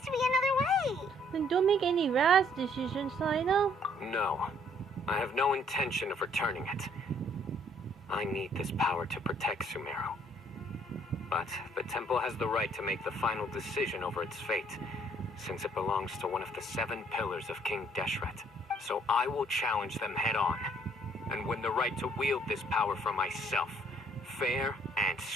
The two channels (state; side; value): normal; both; correlation 0.63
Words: to be another way. Then don't make any rash decisions, Cyno. No. I have no intention of returning it. I need this power to protect Sumeru. But the temple has the right to make the final decision over its fate, since it belongs to one of the 7 pillars of King Deshret. So I will challenge them head-on, and win the right to wield this power for myself, fair and